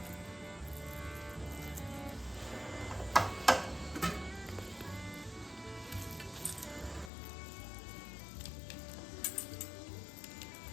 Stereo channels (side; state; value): right; drops out; at 7.1 s